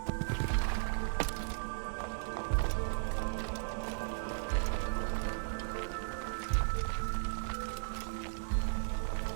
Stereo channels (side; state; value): left; silent; digital silence